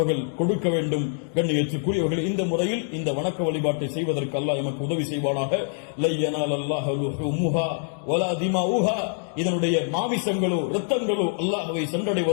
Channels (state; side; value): silent; right; 62 dB below the other